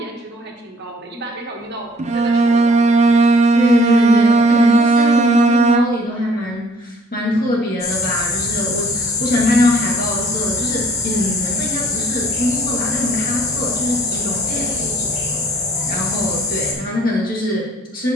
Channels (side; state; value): both; normal; correlation 0.58